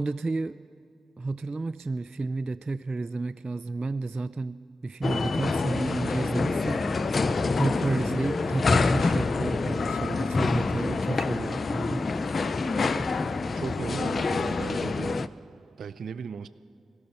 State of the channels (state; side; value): normal; both; correlation 0.92